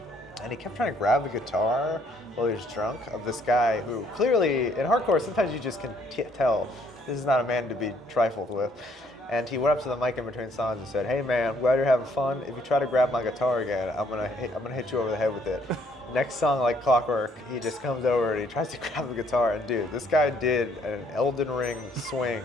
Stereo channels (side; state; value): both; normal; correlation 0.66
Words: and he kept trying to grab the guitar while he was drunk of this guy who clearly in hardcore sometimes you just can tell this is not a man to be trifled with. And he went up to the mic in between songs and said, "Hey man, I'm glad you're having fun. If you try to grab my guitar again, I'm gonna hit you over the head with it." Next song, like clockwork, he just comes over and he tries to grab the guitar. And dude, this guy did an Elden Ring swing